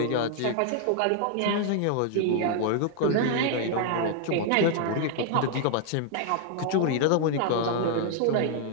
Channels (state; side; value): different; both; correlation 0.00